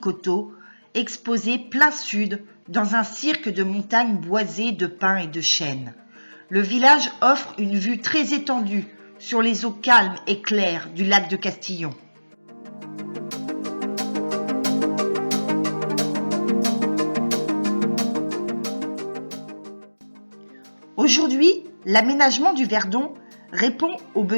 exposé plein sud dans un cirque de montagnes boisées de pins et de chênes. Le village offre une vue très étendue sur les eaux calmes et claires du lac de Castillon. Aujourd'hui, l'aménagement du Verdon répond aux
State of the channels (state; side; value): inverted; both; correlation -1.00